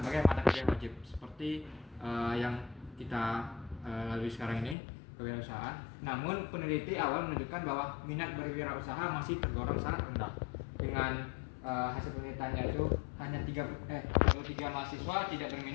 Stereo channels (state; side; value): drops out; right; at 4.8 s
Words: mata kuliah wajib seperti yang kita lalui sekarang ini, kewirausahaan. Namun peneliti awal menunjukkan bahwa minat berwirausaha masih tergolong sangat rendah. Dengan hasil penelitiannya itu hanya 33 mahasiswa tidak